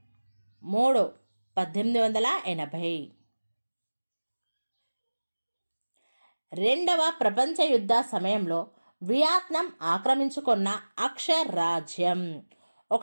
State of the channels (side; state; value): both; inverted; correlation -1.00